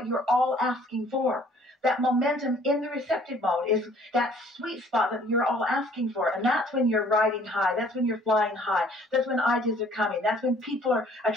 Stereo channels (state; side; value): normal; both; correlation 0.57